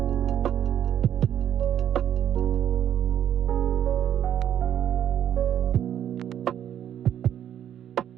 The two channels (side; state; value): left; quieter; 10.2 dB